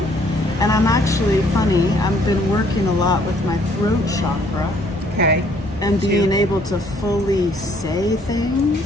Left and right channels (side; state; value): both; normal; correlation 0.63